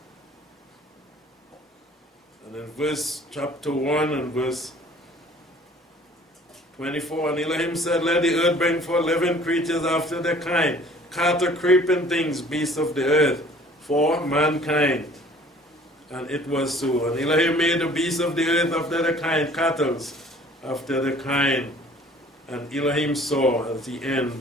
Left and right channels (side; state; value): both; normal; correlation 0.52